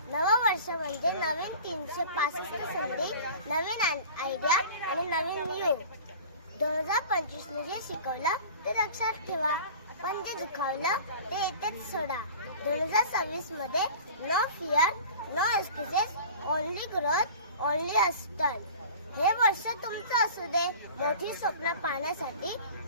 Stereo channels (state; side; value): inverted; both; correlation -0.40